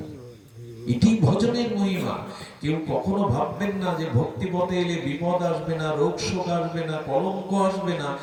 এটি ভজনের মহিমা। কেউ কখনো ভাববেন না যে ভক্তি পথে এলে বিপদ আসবে না, রোগ শোক আসবে না, কলঙ্ক আসবে না,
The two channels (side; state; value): both; identical; correlation 1.00